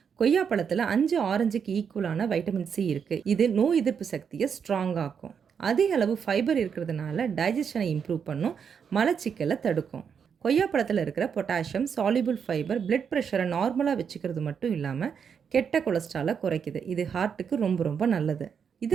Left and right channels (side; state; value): left; quieter; 7.0 dB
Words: கொய்யாப்பழத்தில் 5 ஆரஞ்சுக்கு ஈக்குவலான வைட்டமின் சி இருக்குது. இது நோய் எதிர்ப்பு சக்தியை ஸ்ட்ராங் ஆக்கும். அதிக அளவு ஃபைபர் இருக்கிறதுனால டைஜஷனை இம்ப்ரூவ் பண்ணும், மலச்சிக்கலை தடுக்கும். கொய்யாப்பழத்தில் இருக்கிற பொட்டாசியம், சால்யூபிள் ஃபைபர் பிளட் ப்ரெஷரை நார்மலாக வச்சுக்கிறது மட்டும் இல்லாமல் கெட்ட கொலஸ்ட்ராலை குறைக்குது. இது ஹார்ட்டுக்கு ரொம்ப ரொம்ப நல்லது.